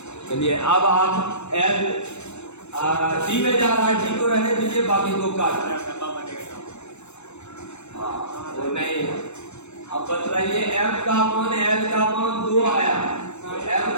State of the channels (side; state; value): right; late; 0.81 ms